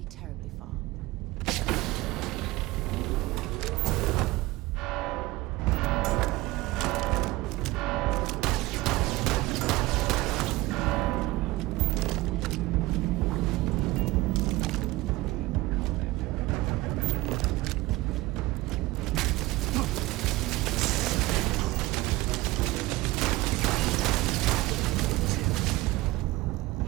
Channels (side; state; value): left; quieter; 19.6 dB